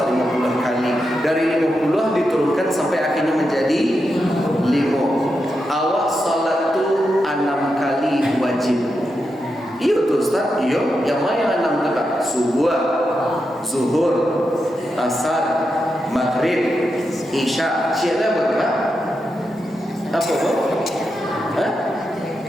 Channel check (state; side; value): normal; both; correlation 0.87